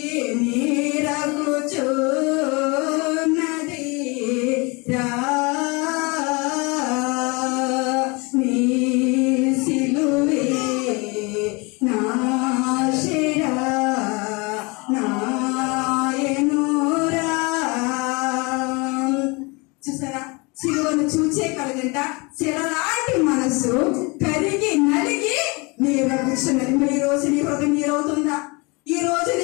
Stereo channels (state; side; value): quieter; right; 27.9 dB